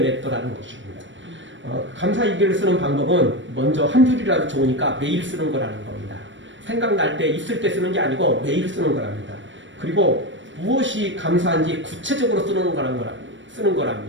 것입니다. 감사일기를 쓰는 방법은 먼저 한 줄이라도 좋으니까 매일 쓰는 거라는 겁니다. 생각날 때 있을 때 쓰는 게 아니고 매일 쓰는 거랍니다. 그리고 무엇이 감사한지 구체적으로 쓰는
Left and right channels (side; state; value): left; late; 0.55 ms